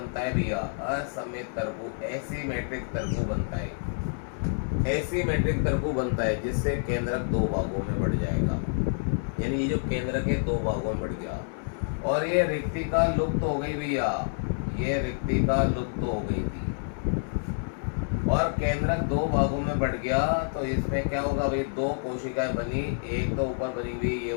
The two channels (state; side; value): silent; right; 59 dB below the other